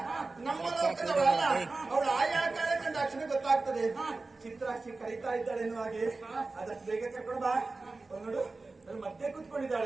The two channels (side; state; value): left; quieter; 3.6 dB